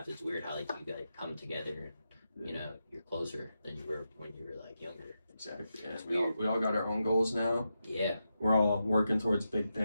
It's weird how like you guys come together and, you know, you're closer than you were when you were like younger. Exactly. Yeah. It's We all got our own goals now. Yeah. We're all working towards big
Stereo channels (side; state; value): both; inverted; correlation -0.88